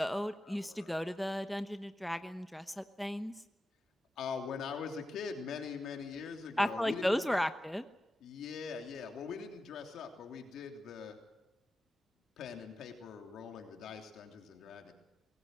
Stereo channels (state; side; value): normal; both; correlation 0.91